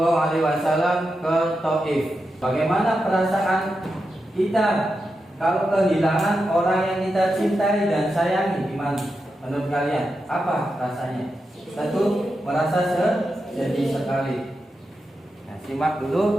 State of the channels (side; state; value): both; normal; correlation 0.88